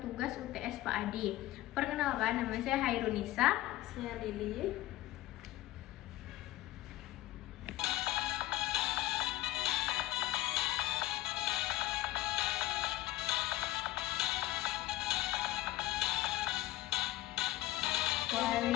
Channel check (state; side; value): quieter; right; 16.6 dB